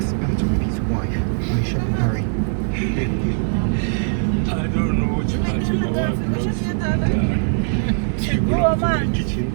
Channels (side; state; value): left; silent; digital silence